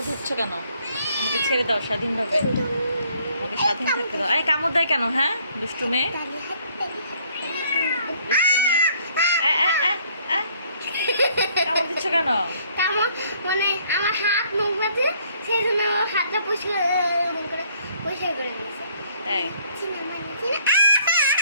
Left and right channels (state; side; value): inverted; both; correlation -0.63